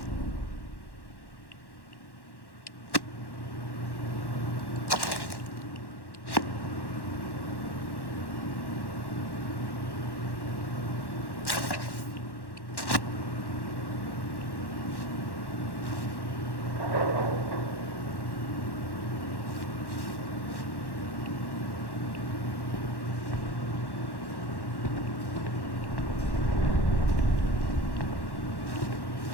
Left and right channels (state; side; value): late; right; 1.1 ms